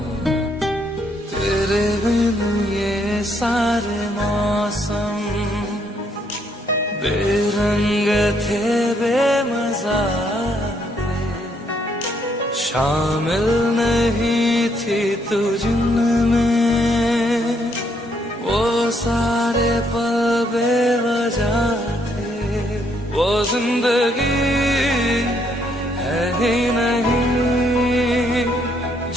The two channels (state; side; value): normal; both; correlation 0.72